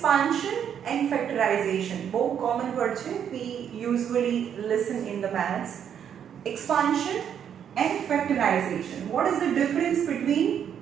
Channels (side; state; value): left; quieter; 8.7 dB